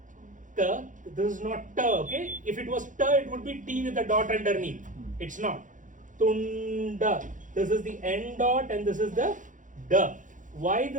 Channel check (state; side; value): late; left; 0.37 ms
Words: ta. This is not ta, okay? If it was ta, it would be T with a dot underneath. It's not. Tunda. This is the N dot and this is the da. Why